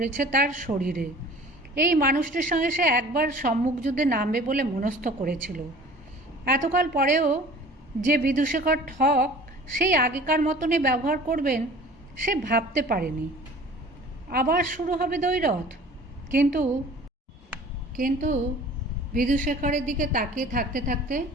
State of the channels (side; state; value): both; normal; correlation 0.45